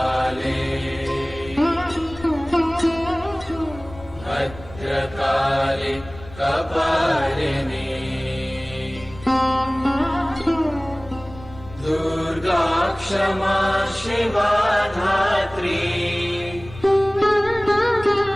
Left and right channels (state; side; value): noise; left; rumble, 17 dB below the sound